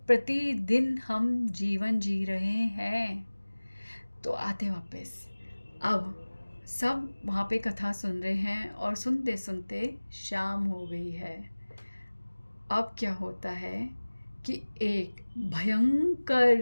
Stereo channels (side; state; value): both; inverted; correlation -1.00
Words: हम जीवन जी रहे हैं। तो आते वापस, अब सब वहाँ पे कथा सुन रहे हैं और सुनते सुनते शाम हो गई है। अब क्या होता है कि एक